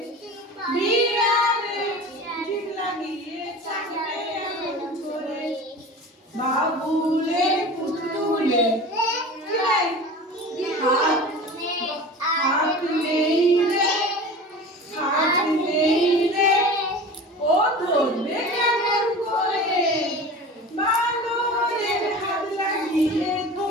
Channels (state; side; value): normal; both; correlation 0.36